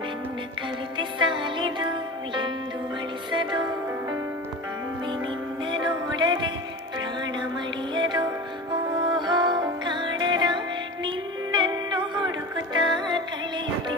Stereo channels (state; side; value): normal; both; correlation 0.31